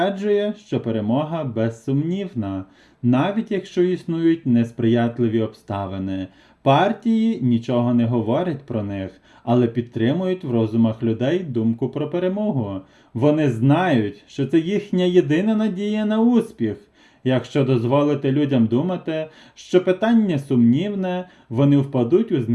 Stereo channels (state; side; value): identical; both; correlation 1.00